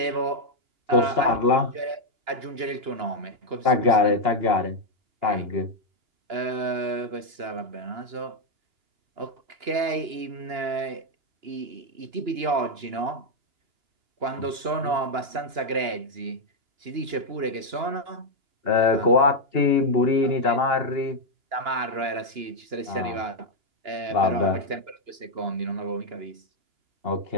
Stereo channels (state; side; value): late; left; 2.9 ms